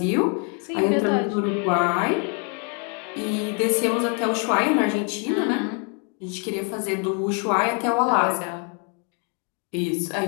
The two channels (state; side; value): quieter; right; 38.8 dB